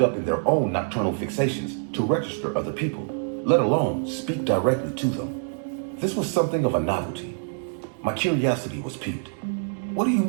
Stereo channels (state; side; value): silent; left; digital silence